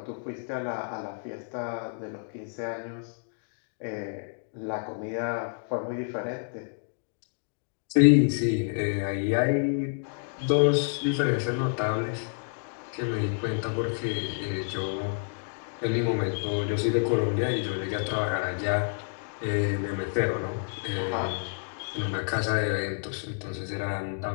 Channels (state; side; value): silent; right; digital silence